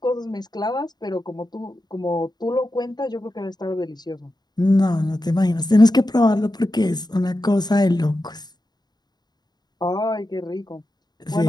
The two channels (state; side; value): late; right; 0.20 ms